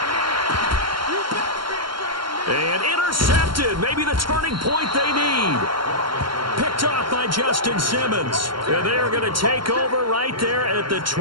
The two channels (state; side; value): late; left; 0.73 ms